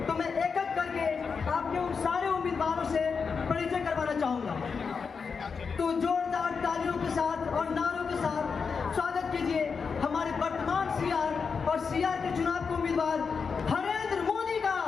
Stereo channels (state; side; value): quieter; right; 5.5 dB